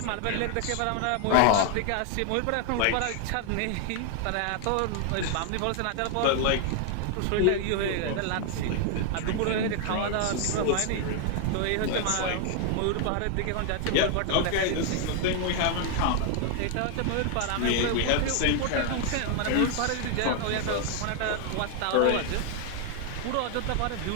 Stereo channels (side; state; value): both; different; correlation 0.00